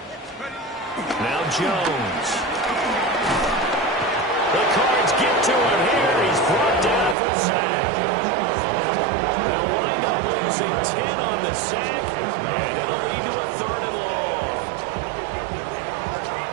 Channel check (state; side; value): drops out; left; at 7.2 s